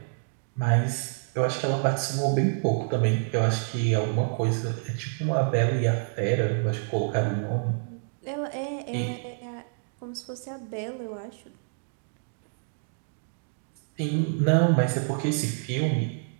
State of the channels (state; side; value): silent; left; digital silence